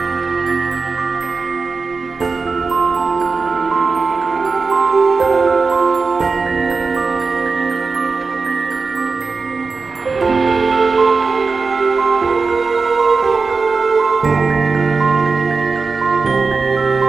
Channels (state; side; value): quieter; left; 4.4 dB